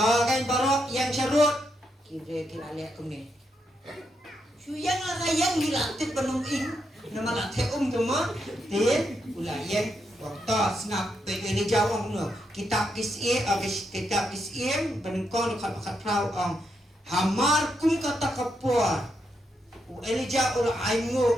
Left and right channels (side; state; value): both; normal; correlation 0.81